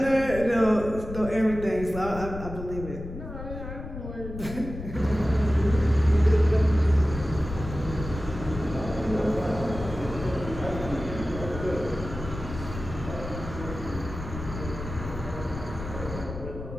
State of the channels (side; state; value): left; noise; rumble, 9 dB below the sound